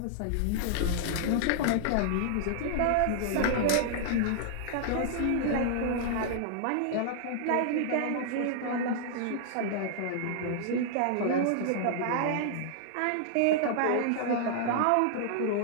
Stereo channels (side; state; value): both; different; correlation -0.01